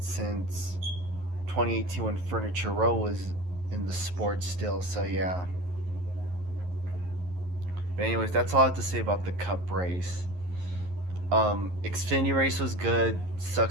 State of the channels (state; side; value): late; left; 11 ms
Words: 2018 when Furniture Row was in the sport still. So yeah. But anyways, that's all I have to say about the Cup race. Xfinity race was good.